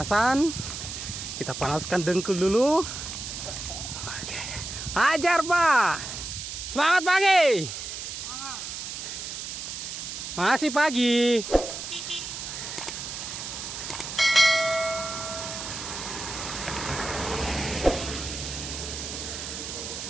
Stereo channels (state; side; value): noise; right; hiss, 7 dB below the sound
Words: Kita panaskan dengkul dulu. Oke. Ajar, Pak. Semangat pagi. Masih pagi.